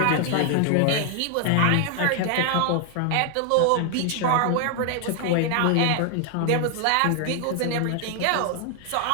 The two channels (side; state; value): both; different; correlation 0.00